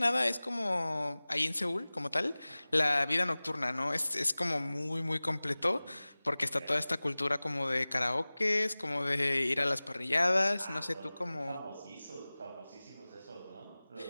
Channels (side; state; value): both; inverted; correlation -0.99